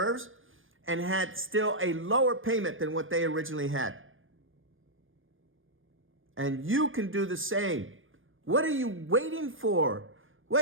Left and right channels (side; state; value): left; late; 0.59 ms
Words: and had still a lower payment than what they originally had. And you can do the same. What are you waiting for?